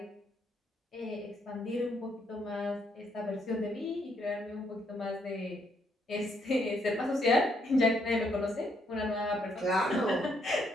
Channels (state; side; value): normal; both; correlation 0.74